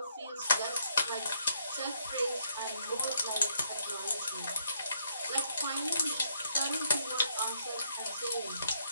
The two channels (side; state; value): both; inverted; correlation -0.72